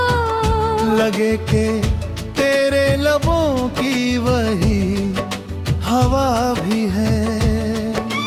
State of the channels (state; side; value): identical; both; correlation 1.00